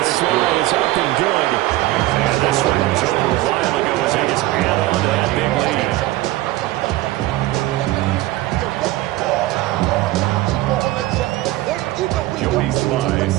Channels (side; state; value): left; quieter; 17.1 dB